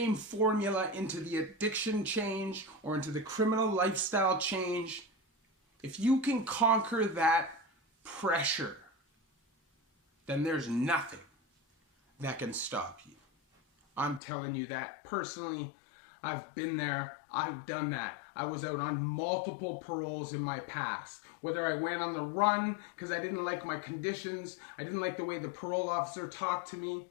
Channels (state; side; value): drops out; right; at 14.2 s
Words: formula into the addiction change or into the criminal lifestyle change. If you can conquer that pressure, then there's nothing that can stop you. I'm telling you that personally. I've been there. I've done that. I was out on multiple paroles in my past. Whether I went on the run because I didn't like my conditions, I didn't like the way the parole officer talked to me,